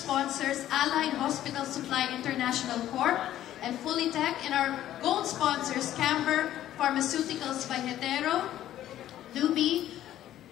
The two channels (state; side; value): quieter; right; 12.6 dB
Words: Allied Hospital Supply International Corp, and Fullytech, and our gold sponsors, Camber Pharmaceuticals by Hetero, Luby,